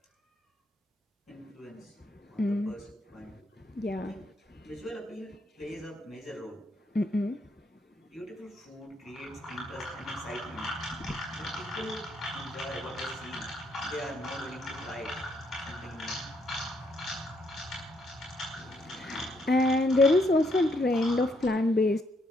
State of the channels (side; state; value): both; normal; correlation 0.73